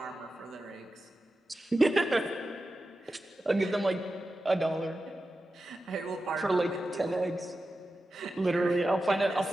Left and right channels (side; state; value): both; normal; correlation 0.92